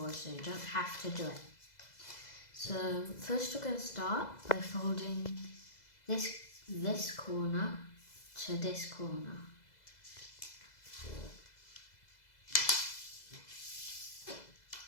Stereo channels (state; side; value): late; right; 2.0 ms